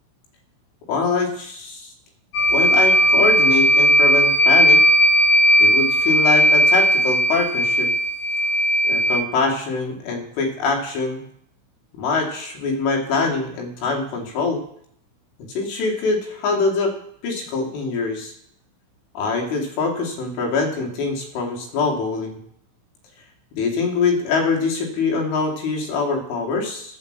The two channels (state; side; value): late; right; 16 ms